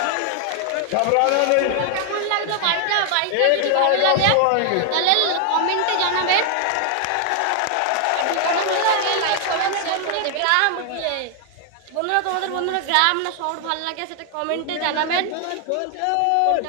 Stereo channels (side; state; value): both; different; correlation 0.00